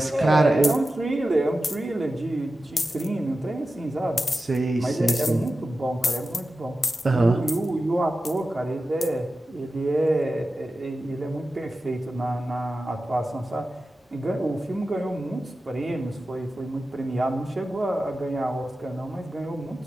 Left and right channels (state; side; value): normal; both; correlation 0.93